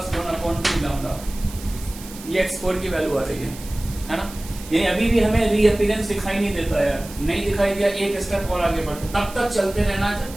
1 अपॉन 2 लैम्डा। ये x4 की वैल्यू आ रही है ना। यानी अभी भी हमें रीअपीयरेंस दिखाई नहीं देता है, नहीं दिखाई दिया, एक स्टेप और आगे बढ़ते, तब तक चलते रहना जब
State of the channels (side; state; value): right; noise; hiss, 16 dB below the sound